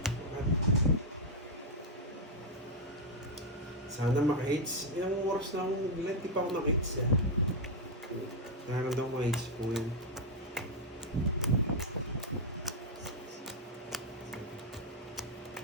Sana maka-hits. Ilang oras na akong nag-let, di pa ako maka-hits eh. Nararamdaman ko maka-hits po yun.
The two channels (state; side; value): normal; both; correlation 0.01